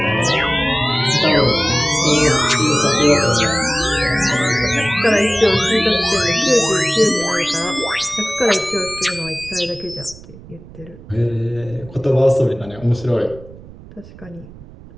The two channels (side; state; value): right; noise; rumble, 19 dB below the sound